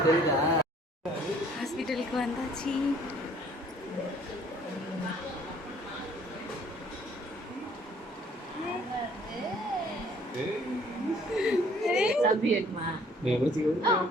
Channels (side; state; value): both; normal; correlation 0.58